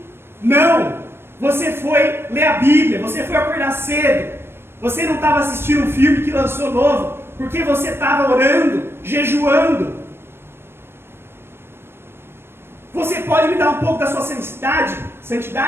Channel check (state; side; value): late; left; 0.12 ms